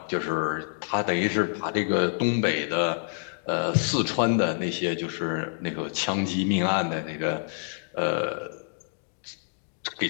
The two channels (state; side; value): silent; right; digital silence